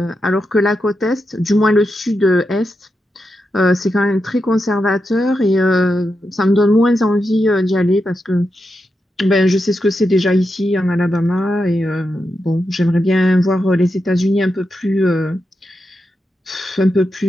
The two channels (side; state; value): both; normal; correlation 0.87